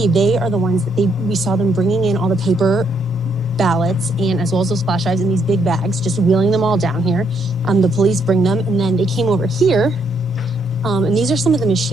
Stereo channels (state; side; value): normal; both; correlation 0.73